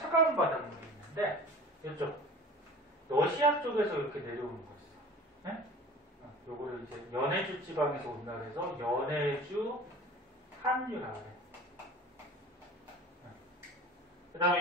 바닷물이 있는데 이쪽 러시아 쪽에서 이렇게 내려오는 거 있어. 네? 요거를 이제 연해주 지방에서 온다 그래서 연해주 한류라고 그래. 그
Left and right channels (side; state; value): both; normal; correlation 0.41